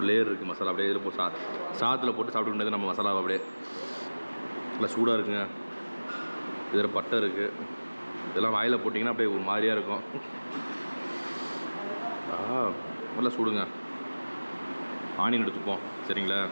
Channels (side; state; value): both; inverted; correlation -1.00